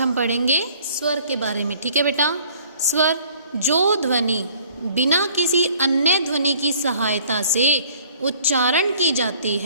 पढ़ेंगे स्वर के बारे में। ठीक है बेटा, स्वर जो ध्वनि बिना किसी अन्य ध्वनि की सहायता से उच्चारण की जाती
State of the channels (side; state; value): both; inverted; correlation -0.56